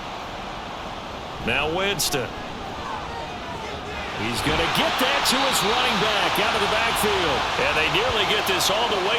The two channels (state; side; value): identical; both; correlation 1.00